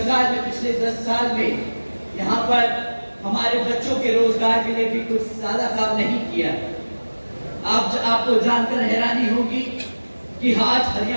ने पिछले 10 साल में यहाँ पर हमारे बच्चों के रोजगार के लिए भी कुछ ज्यादा काम नहीं किया। आपको जानकर हैरानी होगी कि आज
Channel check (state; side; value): inverted; both; correlation -1.00